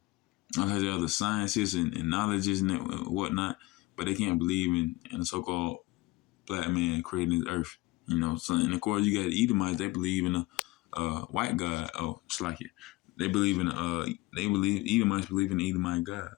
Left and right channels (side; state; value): right; quieter; 20.8 dB